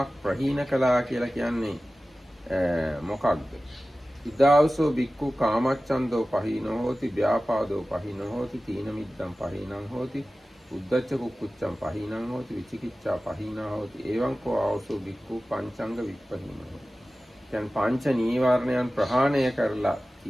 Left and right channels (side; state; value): both; normal; correlation 0.96